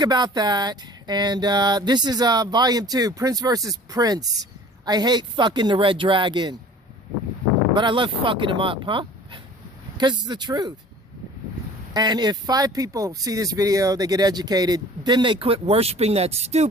about that. And this is volume 2, Prince versus Prince. I hate fucking the Red Dragon. But I love fucking him up, huh? Because it's the truth. And if 5 people see this video, they get educated, then they quit worshiping that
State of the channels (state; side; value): normal; both; correlation 0.46